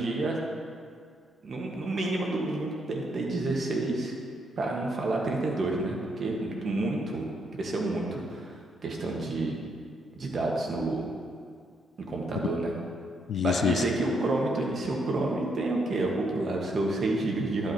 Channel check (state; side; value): normal; both; correlation 0.75